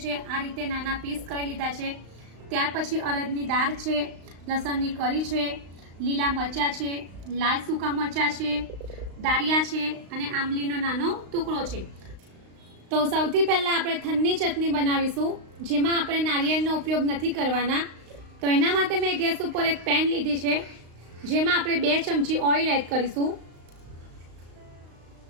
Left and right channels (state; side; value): late; left; 35 ms